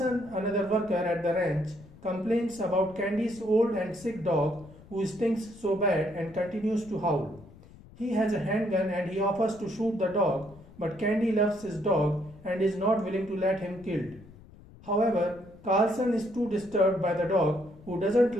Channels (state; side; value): noise; left; rumble, 21 dB below the sound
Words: another worker at the ranch, complains about Candy's old and sick dog who stinks so bad and continues to howl. He has a handgun and he offers to shoot the dog, but Candy loves his dog and is not willing to let him killed. However, Carlson is too disturbed by the dog who doesn't